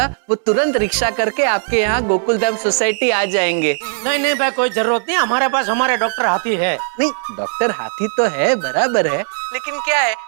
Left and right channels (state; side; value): silent; left; digital silence